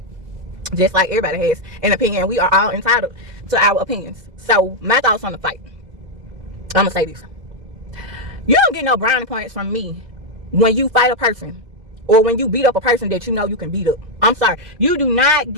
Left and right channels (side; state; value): left; late; 2.0 ms